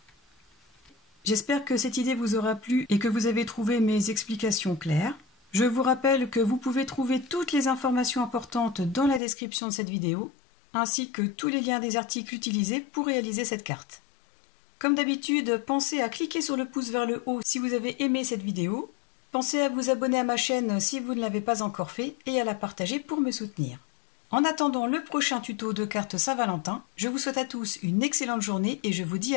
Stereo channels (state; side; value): drops out; right; at 9.2 s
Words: J'espère que cette idée vous aura plu et que vous avez trouvé mes explications claires. Je vous rappelle que vous pouvez trouver toutes les informations importantes dans la description de cette vidéo, ainsi que tous les liens des articles utilisés pour réaliser cette carte. Comme d'habitude, pensez à cliquer sur le pouce vers le haut si vous avez aimé cette vidéo. Pensez à vous abonner à ma chaîne si vous ne l'avez pas encore fait et à la partager pour me soutenir. En attendant le prochain tuto de cartes Saint-Valentin, je vous souhaite à tous une excellente journée et je vous dis